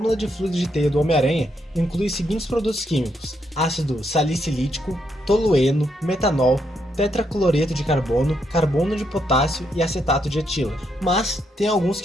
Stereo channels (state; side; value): normal; both; correlation 0.78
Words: de fluido de teia do Homem-Aranha inclui os seguintes produtos químicos: ácido salicílico, tolueno, metanol, tetracloreto de carbono, carbono de potássio e acetato de etila. Mas tem alguns